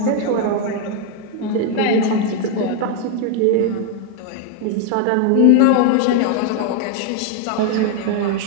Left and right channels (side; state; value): both; different; correlation 0.01